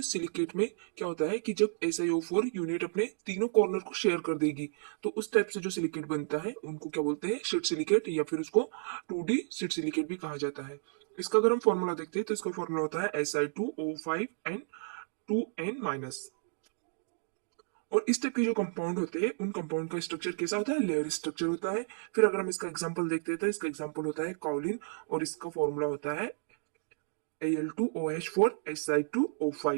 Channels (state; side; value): silent; left; digital silence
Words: सिलिकेट में क्या होता है कि जब SiO4 यूनिट अपने तीनों कॉर्नर को शेयर कर देगी तो उस टाइप से जो सिलिकेट बनता है उनको क्या बोलते हैं, शीट सिलिकेट, या फिर उसको 2D शीट सिलिकेट भी कहा जाता है। इसका अगर हम फॉर्मूला देखते हैं तो इसका फॉर्मूला होता है Si2O5N2N-। और इस टाइप के जो कंपाउंड होते हैं उन कंपाउंड का स्ट्रक्चर कैसा होता है, लेयर स्ट्रक्चर होता है। फिर अगर हम इसका एग्जांपल देखते हैं तो इसका एग्जांपल होता है काउलिन और इसका फॉर्मूला होता है